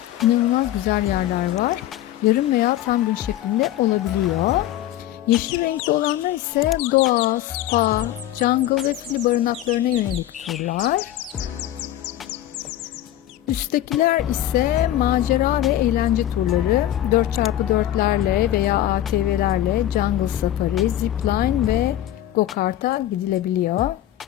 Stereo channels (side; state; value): right; quieter; 13.0 dB